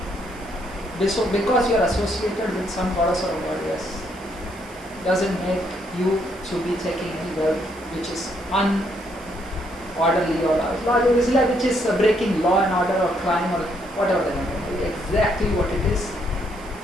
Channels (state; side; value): noise; right; hiss, 23 dB below the sound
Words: because you are associated with some goddess or goddess, doesn't make you to be taking any word which is unorderly or which is breaking law and order or crime or whatever the name. Exactly what it is,